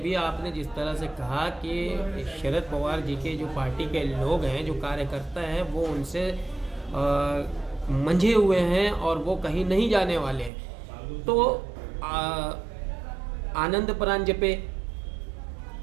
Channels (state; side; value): drops out; left; at 10.5 s